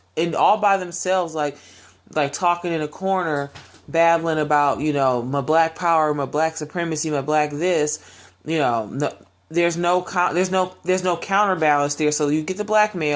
all by themselves, like talking in a corner, babbling about, you know, my black power, my black supremacy, my black this, you know. There's no counterbalance there. So you get the black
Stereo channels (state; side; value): identical; both; correlation 1.00